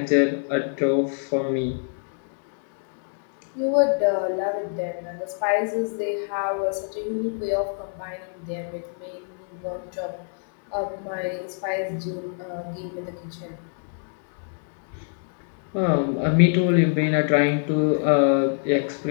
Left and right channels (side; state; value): right; silent; 61 dB below the other